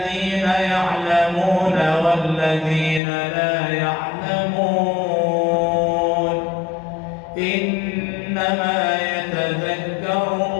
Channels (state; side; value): drops out; right; at 3.0 s